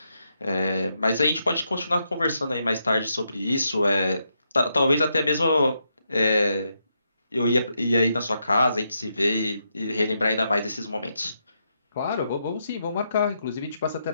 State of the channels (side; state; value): both; inverted; correlation -0.81